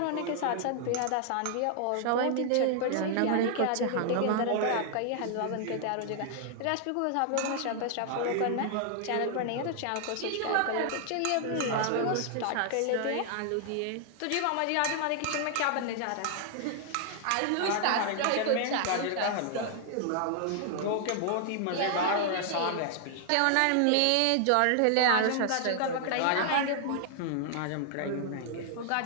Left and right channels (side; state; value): both; different; correlation 0.00